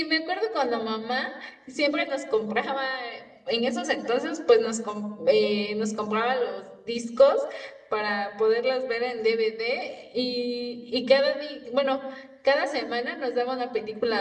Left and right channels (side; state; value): both; identical; correlation 1.00